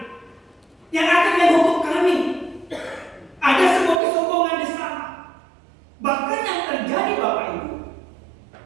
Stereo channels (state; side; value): drops out; left; at 4.0 s